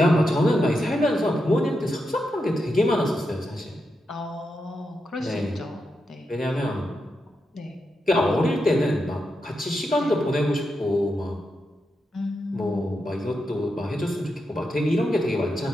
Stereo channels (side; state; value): both; normal; correlation 0.86